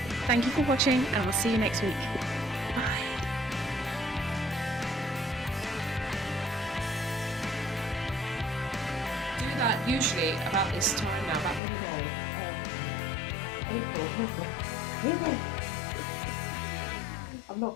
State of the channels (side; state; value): right; drops out; at 11.6 s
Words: thank you for watching and I'll see you next week. Bye. Do that usually about this time now, about mid-May, April. Oh gosh, Kibbie! I've not